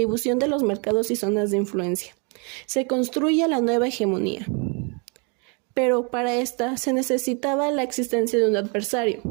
de los mercados y zonas de influencia. Se construye la nueva hegemonía. Pero para esta se necesitaba la existencia de un adversario.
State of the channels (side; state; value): left; quieter; 34.3 dB